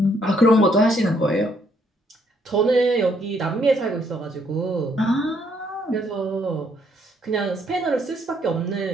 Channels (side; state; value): both; normal; correlation 0.70